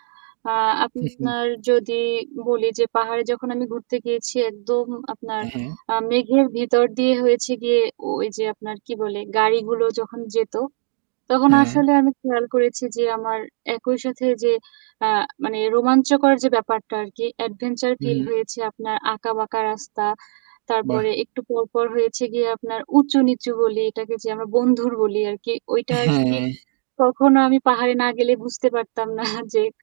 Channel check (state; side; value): silent; left; digital silence